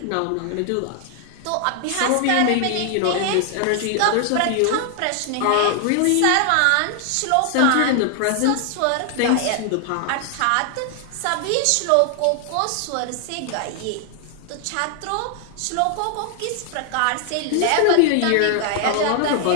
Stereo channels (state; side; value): different; both; correlation 0.00